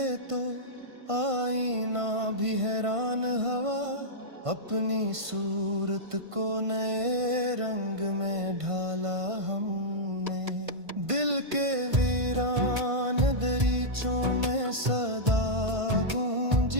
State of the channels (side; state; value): left; late; 1.5 ms